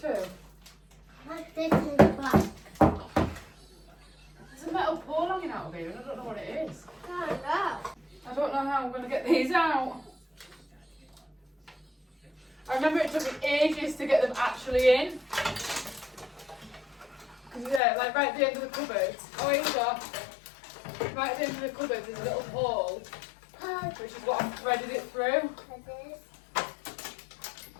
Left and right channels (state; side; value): drops out; right; at 17.8 s